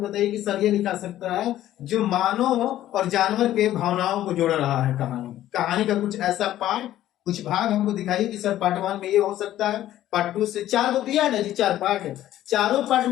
कि सर ये लिखा सकता है जो मानव और जानवर के भावनाओं को जोड़ रहा है। कहानी का कुछ ऐसा पार्ट, कुछ भाग हमको दिखाइए कि सर पार्ट 1 में ये हो सकता है, पार्ट 2 से 4 को दिया है ना जी, 4 पार्ट है, चारों पार्ट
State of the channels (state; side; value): quieter; right; 13.2 dB